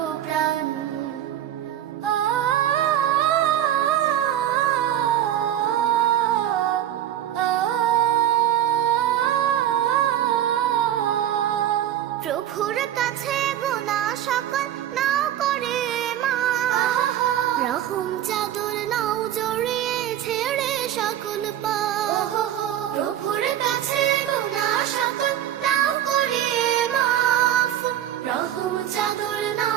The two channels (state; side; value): quieter; left; 11.5 dB